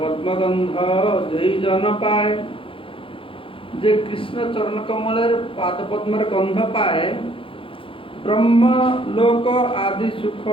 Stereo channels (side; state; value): right; late; 0.26 ms